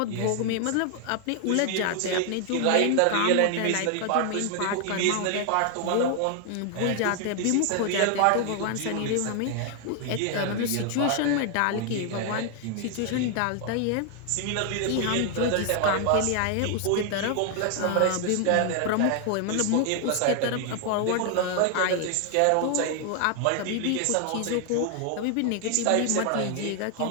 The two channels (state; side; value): different; both; correlation 0.00